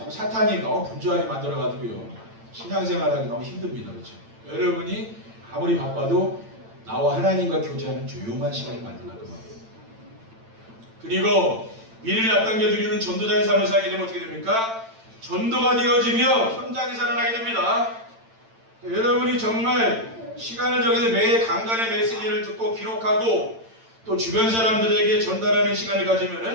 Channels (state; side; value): late; left; 8.9 ms